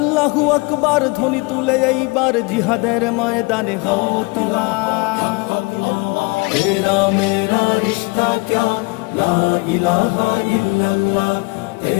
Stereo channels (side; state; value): right; quieter; 27.2 dB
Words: আকবার ধ্বনি তুলে এইবার জিহাদের ময়দানে হও তোলা। तेरा मेरा रिश्ता क्या ला इलाहा इल्लल्लाह,